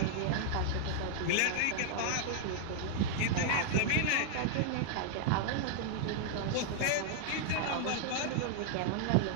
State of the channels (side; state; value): both; different; correlation -0.01